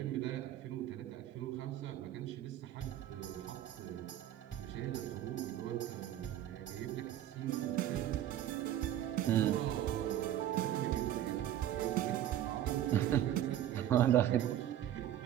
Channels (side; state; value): left; quieter; 11.9 dB